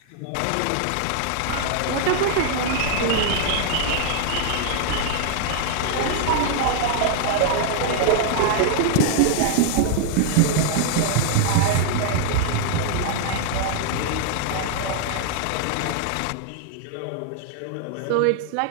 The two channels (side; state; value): both; different; correlation 0.00